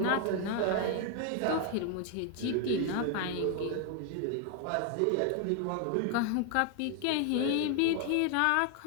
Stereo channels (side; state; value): both; different; correlation 0.00